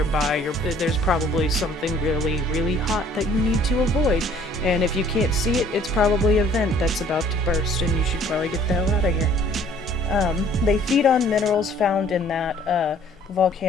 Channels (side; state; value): both; normal; correlation 0.56